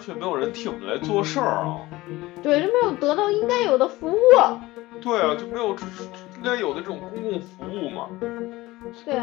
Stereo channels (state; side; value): quieter; right; 19.0 dB